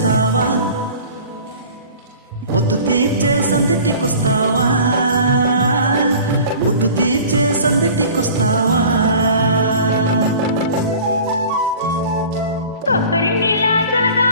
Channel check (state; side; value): inverted; both; correlation -0.43